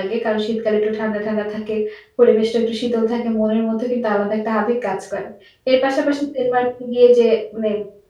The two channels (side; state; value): both; identical; correlation 1.00